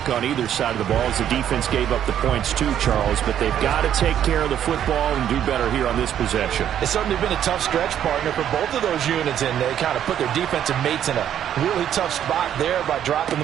on either side of the ball as the defense gave up the points too, Charles. But they've got to take care of the football and do better here on this possession. It's certainly been a tough stretch, partner, for both of those units, and they kind of put their defensive mates in a really tough spot there by dropping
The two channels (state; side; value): quieter; left; 10.1 dB